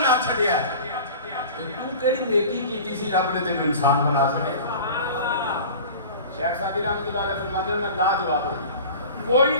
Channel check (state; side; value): inverted; both; correlation -0.38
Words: چھڈیا تو کیڑی نیکی کیتی سی رب نے تینوں انسان بنا چھڈیا شیخ سعدی رحمۃ اللہ علیہ فرماتے ہیں میں لا جواب ہوں